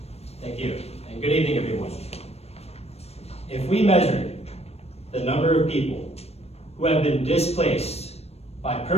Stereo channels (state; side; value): late; right; 0.30 ms